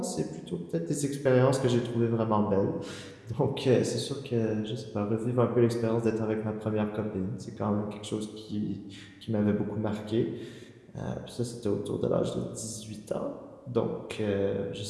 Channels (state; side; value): identical; both; correlation 1.00